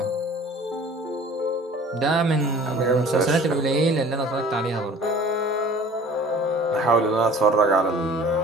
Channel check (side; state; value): both; normal; correlation 0.48